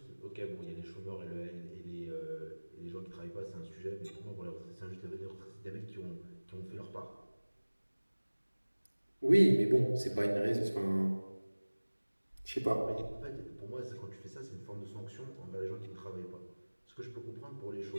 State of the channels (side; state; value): both; inverted; correlation -1.00